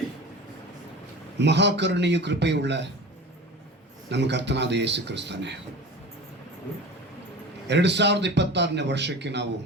ಮಹಾಕರುಣೆಯು ಕೃಪೆಯುಳ್ಳ ನಮ್ಮ ಕರ್ತನಾದ ಯೇಸು ಕ್ರಿಸ್ತನೇ, 2026ನೇ ವರ್ಷಕ್ಕೆ ನಾವು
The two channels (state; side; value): normal; both; correlation 0.35